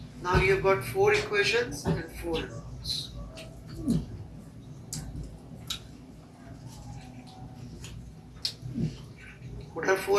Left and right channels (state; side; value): identical; both; correlation 1.00